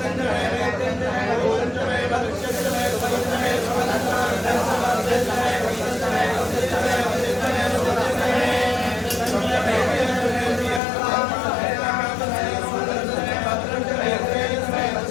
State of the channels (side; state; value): right; drops out; at 10.8 s